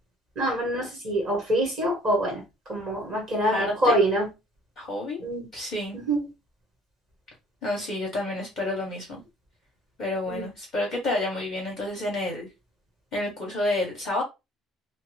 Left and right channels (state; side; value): normal; both; correlation 0.54